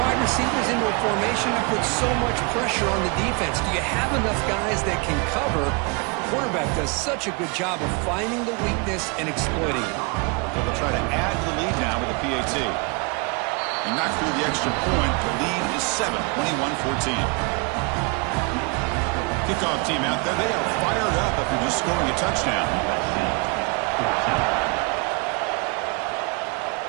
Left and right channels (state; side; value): quieter; left; 31.9 dB